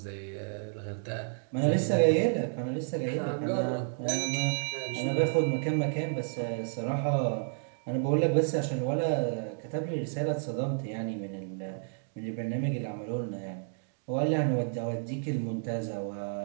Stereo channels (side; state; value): left; silent; digital silence